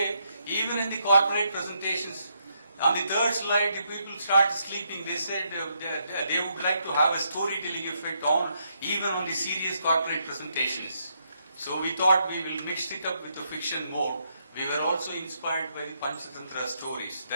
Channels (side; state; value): both; inverted; correlation -0.77